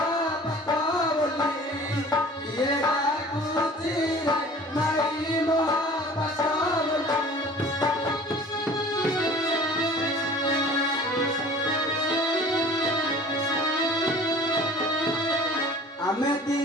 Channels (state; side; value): normal; both; correlation 0.45